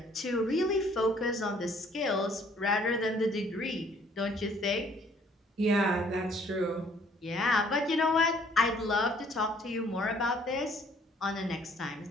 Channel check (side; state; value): both; normal; correlation 0.61